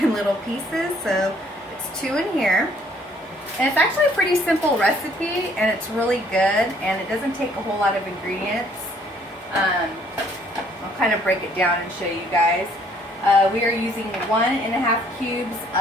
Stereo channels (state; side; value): normal; both; correlation 0.62